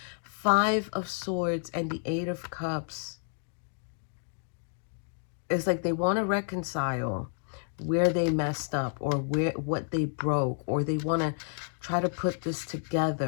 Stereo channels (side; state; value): right; silent; digital silence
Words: 5 of Swords and the 8 of Cups. It's like they want to reconcile where they messed up or what they broke, or they want to try to put this